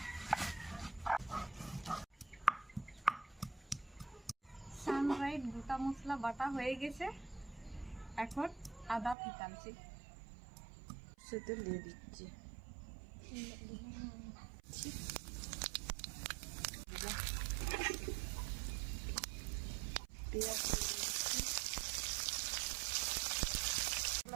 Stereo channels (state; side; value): drops out; left; at 9.2 s